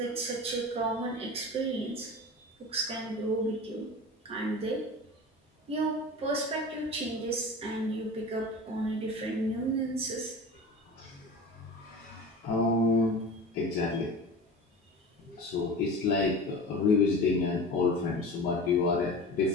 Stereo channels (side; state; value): both; normal; correlation 0.33